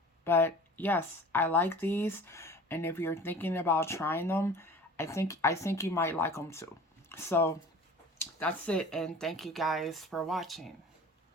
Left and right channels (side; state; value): both; normal; correlation 0.41